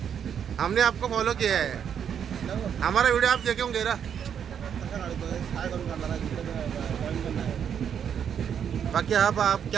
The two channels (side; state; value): left; quieter; 8.2 dB